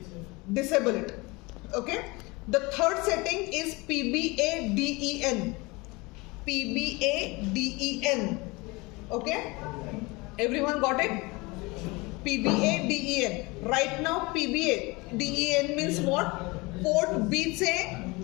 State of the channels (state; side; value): quieter; right; 24.8 dB